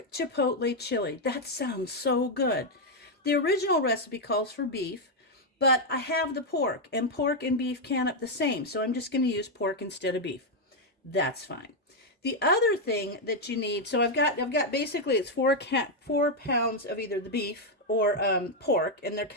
chipotle chili. That sounds so good. The original recipe calls for beef, but I have the pork and beef can up the same, so I'm just going to use pork instead of beef. That's fine. The other thing that you need, so I've got basically it's 4 pounds of either the beef or pork, and they're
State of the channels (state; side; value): normal; both; correlation 0.01